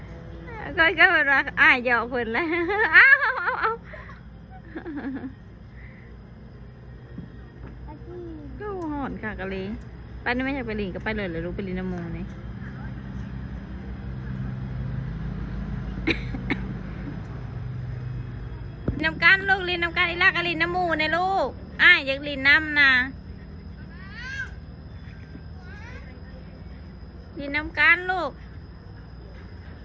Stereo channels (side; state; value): both; identical; correlation 1.00